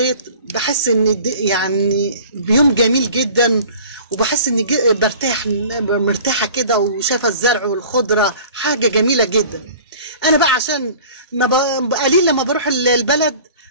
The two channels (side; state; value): both; inverted; correlation -0.45